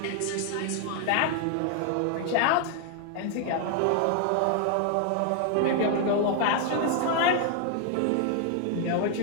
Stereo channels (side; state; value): both; different; correlation 0.00